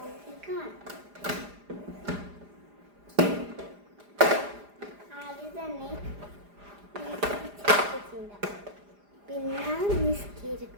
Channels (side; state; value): left; late; 4.9 ms